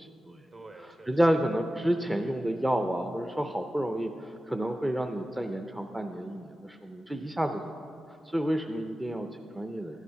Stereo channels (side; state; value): both; normal; correlation 0.94